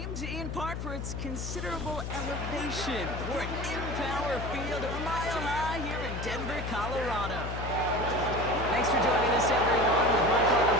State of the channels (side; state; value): left; noise; hum, 5 dB below the sound